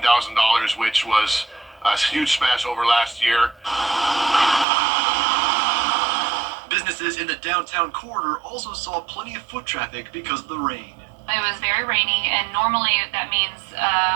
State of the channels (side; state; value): left; drops out; at 4.7 s